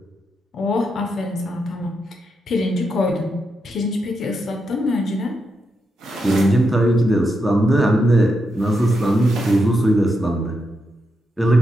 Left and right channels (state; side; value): normal; both; correlation 0.84